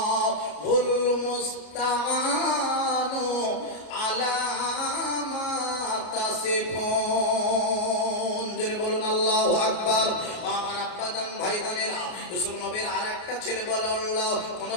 মুস্তাআনু আলা মা তাসিফুন। জোরে বলুন আল্লাহু আকবার। আমার আব্বাজান ভাইজানেরা, ইউসুফ নবীর আরেকটা ছেলে বলে আল্লাহ কোনো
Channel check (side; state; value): right; late; 33 ms